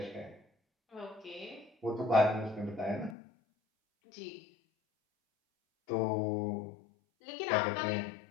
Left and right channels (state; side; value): drops out; right; at 3.2 s